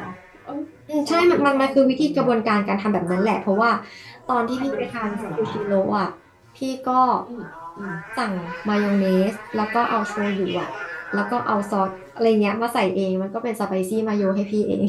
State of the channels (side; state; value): both; identical; correlation 1.00